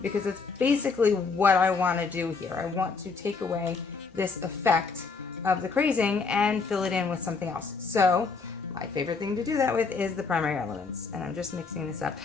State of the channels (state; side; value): quieter; right; 4.7 dB